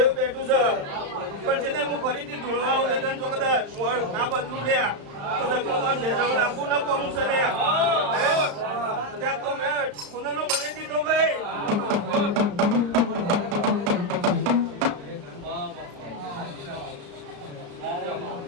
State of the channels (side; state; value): left; late; 35 ms